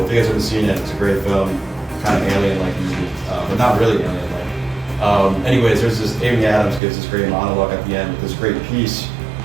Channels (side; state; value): left; drops out; at 6.8 s